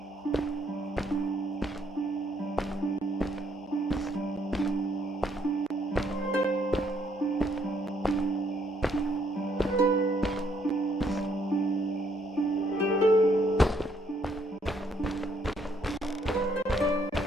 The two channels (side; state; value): both; normal; correlation 0.70